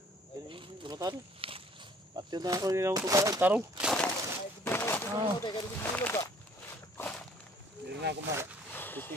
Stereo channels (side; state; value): both; normal; correlation 0.57